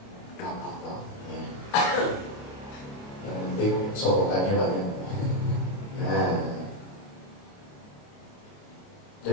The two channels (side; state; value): right; late; 29 ms